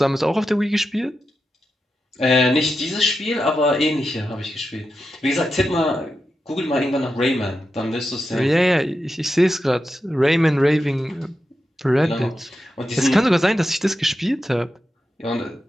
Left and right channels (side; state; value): both; normal; correlation 0.89